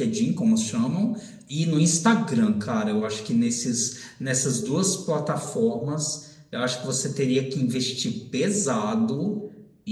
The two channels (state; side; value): identical; both; correlation 1.00